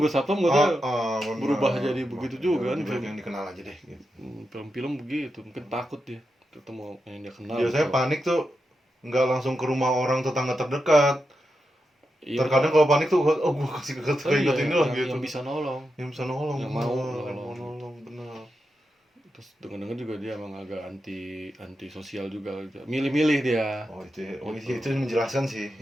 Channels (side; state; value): both; normal; correlation 0.88